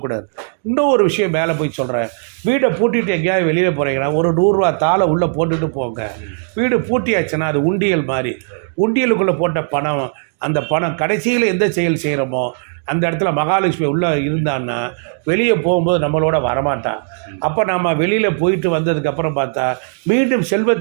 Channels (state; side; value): silent; left; digital silence